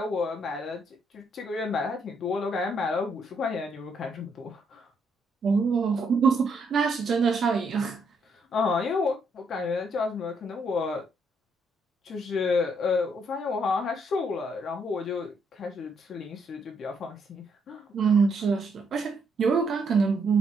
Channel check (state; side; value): normal; both; correlation 0.74